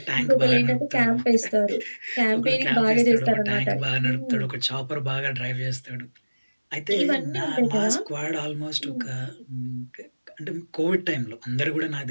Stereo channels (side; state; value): both; inverted; correlation -1.00